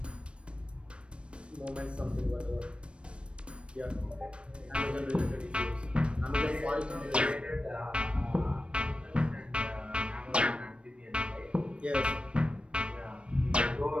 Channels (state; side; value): late; left; 0.058 ms